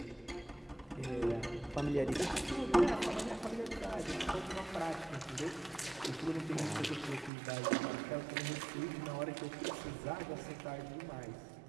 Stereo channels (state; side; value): drops out; left; at 7.3 s